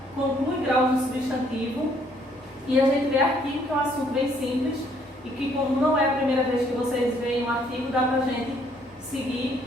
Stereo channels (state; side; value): normal; both; correlation 0.66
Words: conclui graus do substantivo, e a gente vê artigo, que é um assunto bem simples, e que como não é a primeira vez que vocês veem um artigo, dá para a gente seguir,